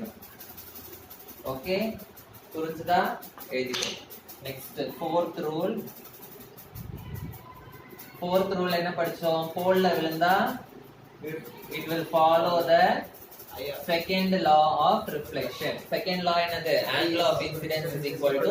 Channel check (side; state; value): both; identical; correlation 1.00